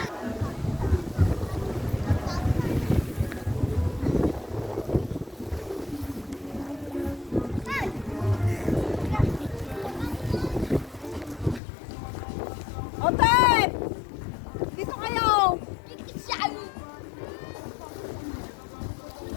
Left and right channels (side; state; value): right; drops out; at 11.6 s